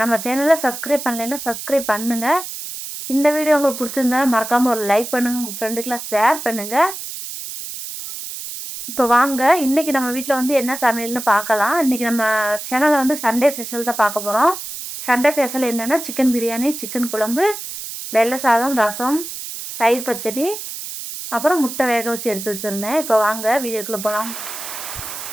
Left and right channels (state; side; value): noise; right; hiss, 9 dB below the sound